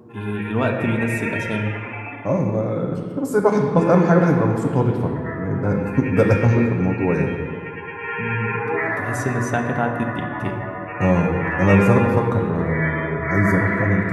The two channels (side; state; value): both; identical; correlation 1.00